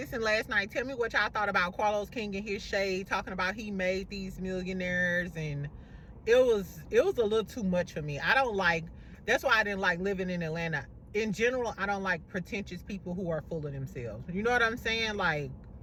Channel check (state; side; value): identical; both; correlation 1.00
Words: last night, tell me what y'all thought about Carlos King and his shade, talking about he made these millionaires, and it was a little too much for me. That's why I didn't like living in Atlanta. In general, I don't like pretentious people who are full of themselves. You know what I'm saying? Like,